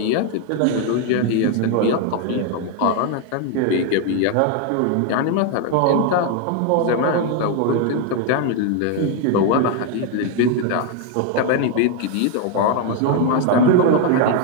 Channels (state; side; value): different; both; correlation 0.01